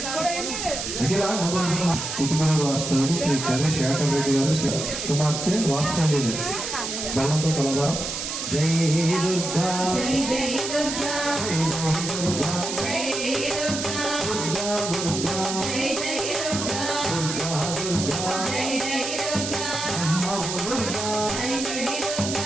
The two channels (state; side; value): noise; right; hiss, 4 dB below the sound